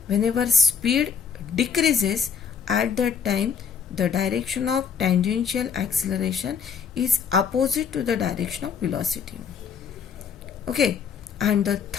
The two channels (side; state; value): right; quieter; 6.7 dB